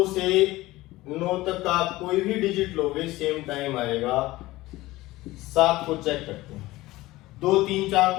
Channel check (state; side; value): quieter; right; 18.4 dB